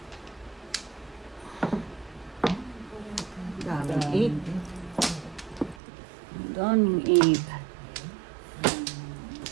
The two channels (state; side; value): drops out; left; at 5.8 s